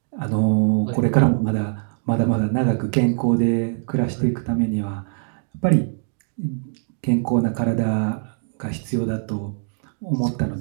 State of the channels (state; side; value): silent; left; digital silence